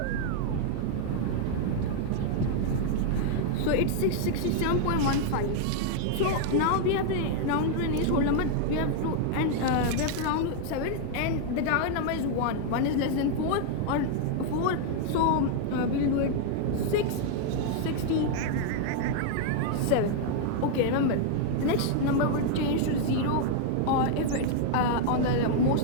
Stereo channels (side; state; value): both; different; correlation 0.00